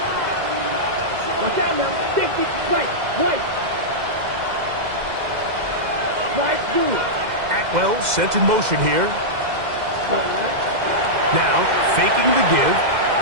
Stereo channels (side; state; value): left; late; 2.0 ms